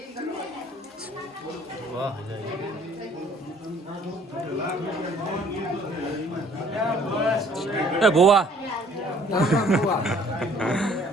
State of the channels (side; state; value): both; normal; correlation 0.58